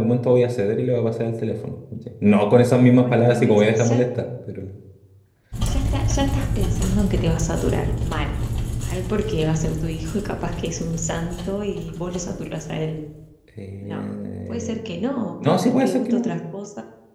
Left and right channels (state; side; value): identical; both; correlation 1.00